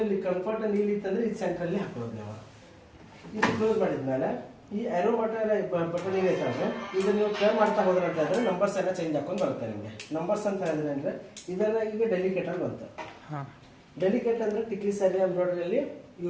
ಇಲ್ಲಿ ಕಂಫರ್ಟ್ ನೀಲಿ ಇತ್ತಂದ್ರೆ ಇದು ಸೆಂಟ್ರಲ್ಲಿ ಹಾಕೊಳ್ಳೋದು ನಾವು. ಇದು ಕ್ಲೋಸ್ ಮಾಡಿದ್ಮೇಲೆ ಈ ಆರೋ ಬಟನ್ ಏನೈತೆ ಅಂದ್ರೆ ಇದನ್ನ ನೀವು ಟ್ರೈ ಮಾಡ್ತಾ ಹೋದ್ರೆ ಅಂತ ಹೇಳಿದ್ರೆ ನಂಬರ್ಸ್ ಎಲ್ಲ ಚೇಂಜ್ ಹಾಕೊಂಡು ಬರುತ್ತೆ ನಿಮಗೆ. ನಂಬರ್ಸ್ ಅಂತ ಹೇಳಿದ್ರೆ ಅಂದ್ರೆ ಇದೆಲ್ಲ ಈಗ ಡೆಲಿಕೇಟ್ ಆಗಿ ಬಂತು. ಡೆಲಿಕೇಟ್ ಅಂದ್ರೆ ಟಿಕ್ಲಿ ಸ್ಯಾರಿ ಎಂಬ್ರಾಯ್ಡ್ರಿಯಲ್ಲಿ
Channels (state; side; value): identical; both; correlation 1.00